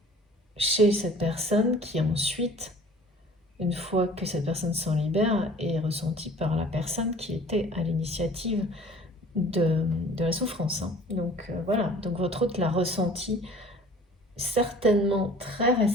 chez cette personne qui ensuite, une fois que cette personne s'en libère, est ressentie par la personne qui était à l'initiative de la souffrance. Hein. Donc voilà, donc votre hôte l'a ressenti certainement très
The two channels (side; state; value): both; normal; correlation 0.48